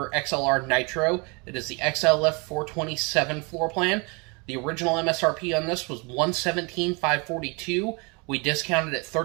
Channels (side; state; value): left; quieter; 30.2 dB